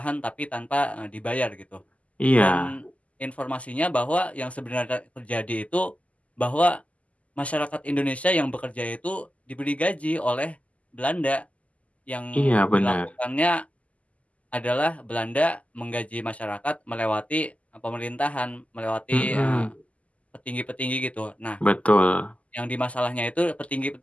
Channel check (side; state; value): right; late; 0.068 ms